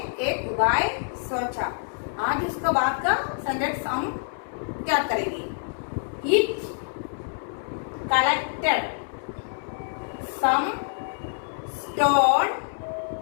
एक उपाय सोचा। आज उसका बाद का सेंटेंस हम क्या करेंगे, it collected some stone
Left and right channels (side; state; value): right; silent; digital silence